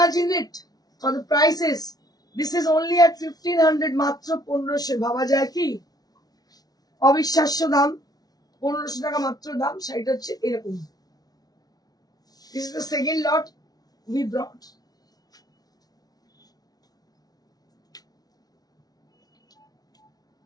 it for the prices this is only at 1500 মাত্র 1500 ভাবা যায় কি অবিশ্বাস্য দাম 1500 টাকা মাত্র দাম শাড়িটা হচ্ছে এরকম this is the second lot we brought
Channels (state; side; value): late; right; 0.19 ms